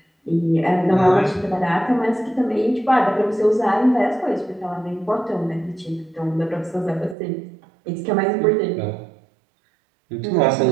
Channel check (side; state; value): left; drops out; at 7.2 s